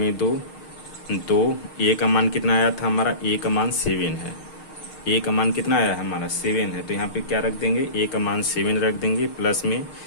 2। a का मान कितना आया था हमारा, a का मान 7 है। a का मान कितना आया है हमारा 7 है। तो यहाँ पे क्या रख देंगे, a का मान 7 रख देंगे, प्लस में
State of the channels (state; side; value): late; right; 6.5 ms